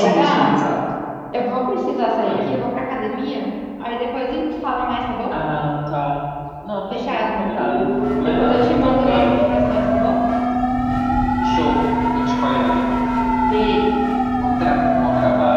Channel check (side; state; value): both; identical; correlation 1.00